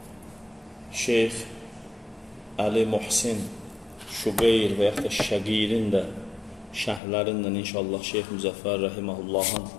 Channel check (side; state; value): right; drops out; at 7.0 s